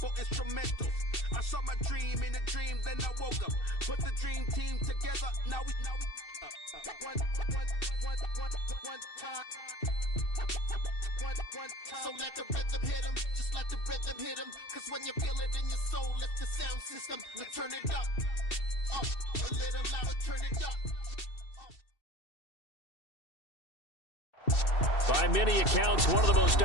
instrumentals. I saw my dream in a dream, then I woke up. Put the dream team together, now we one time. So let the rhythm hit 'em, just let the rhythm hit 'em. Cause when you feel it in your soul, lift the sound system. Let's turn it up, a little louder, turn it up. By many accounts, one of the most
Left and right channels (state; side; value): late; right; 2.6 ms